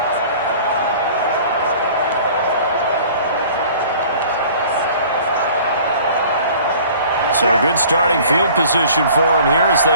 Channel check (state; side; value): inverted; both; correlation -0.48